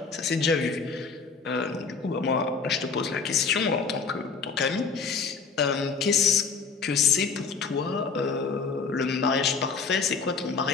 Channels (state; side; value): quieter; right; 5.1 dB